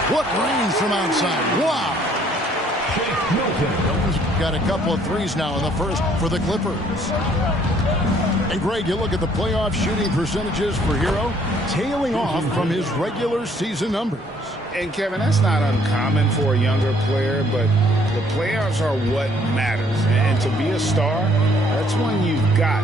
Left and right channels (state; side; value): normal; both; correlation 0.63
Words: What range from outside. Wow. Milton's got a couple of threes now in the first for the Clippers. And Greg, you look at the playoff shooting percentages for Hero, tailing off from his regular season numbers. And Kevin, that's not uncommon for a younger player, but the playoffs are what matters. And to be a star, that's when you've got